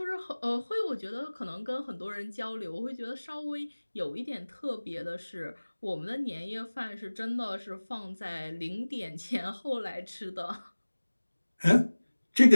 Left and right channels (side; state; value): both; inverted; correlation -1.00